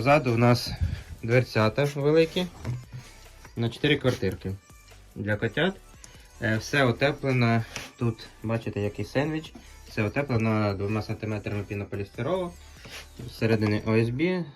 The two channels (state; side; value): identical; both; correlation 1.00